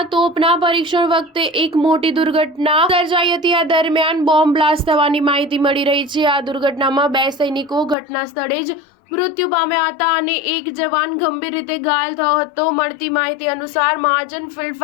તોપના પરીક્ષણ વખતે એક મોટી દુર્ઘટના સર્જાઈ હતી। આ દરમિયાન બોમ્બ બ્લાસ્ટ થવાની માહિતી મળી રહી છે। આ દુર્ઘટનામાં 2 સૈનિકો ઘટના સ્થળે જ મૃત્યુ પામ્યા હતા અને 1 જવાન ગંભીર રીતે ઘાયલ થયો હતો। મળતી માહિતી અનુસાર મહાજન ફિલ્ડ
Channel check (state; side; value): drops out; right; at 8.0 s